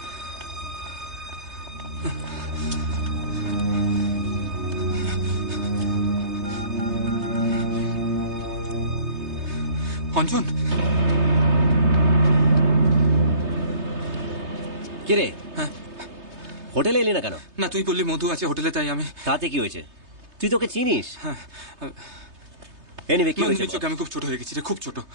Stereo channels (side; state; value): left; late; 3.3 ms